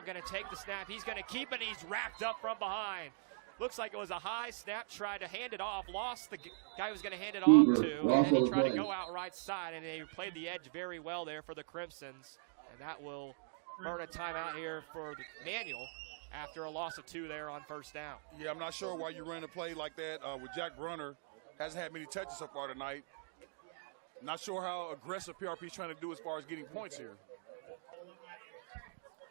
going to take the snap. He's going to keep it. He's wrapped up from behind. Looks like it was a high snap. Tried to hand it off. Lost the guy who was going to hand it off to. And he tried to go out right side, and they played the edge very well there for the Crimsons. And that will earn a timeout here for the Manual after a loss of 2 there on first down. Yeah, I'm not sure why you ran a play like that with Jack Brunner. Hasn't had many touches so far tonight. Not sure how aggressive PRP is trying to do as far as getting points here.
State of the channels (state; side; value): silent; left; digital silence